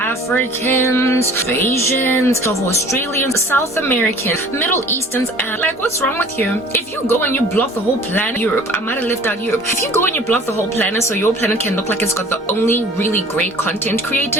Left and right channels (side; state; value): both; normal; correlation 0.48